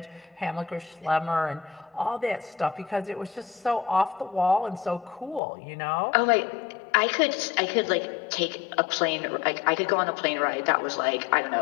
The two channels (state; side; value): drops out; right; at 5.4 s